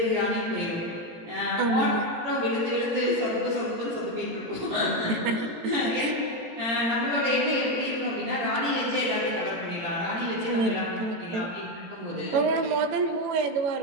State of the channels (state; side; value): late; left; 18 ms